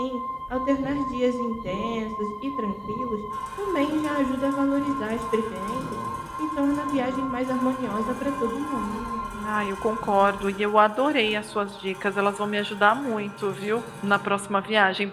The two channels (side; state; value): both; identical; correlation 1.00